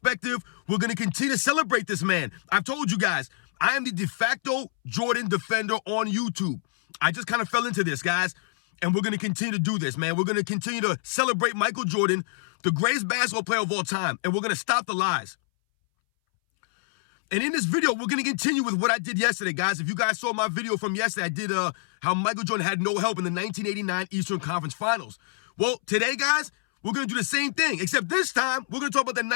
We're going to continue to celebrate this man. I've told you guys, I am the de facto Jordan defender on YouTube. I just kind of fell into this, guys, and we're going to continue to do this, man. We're going to continue to celebrate Michael Jordan, the greatest basketball player of all time, and we're going to stop the lies. And in this video, we're going to continue with what I did yesterday, guys. If you guys saw my video from yesterday, I did how Michael Jordan had no help in the 1989 Eastern Conference Finals. Well, today, guys, we're going to do the same thing, except this time, we're going to talk about the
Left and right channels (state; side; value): silent; right; 61 dB below the other